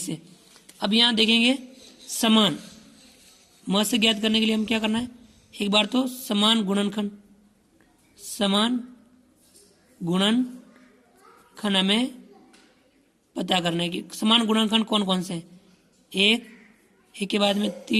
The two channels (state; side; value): identical; both; correlation 1.00